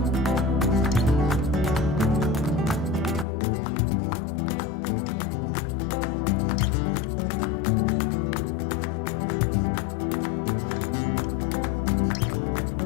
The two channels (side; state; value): right; drops out; at 3.2 s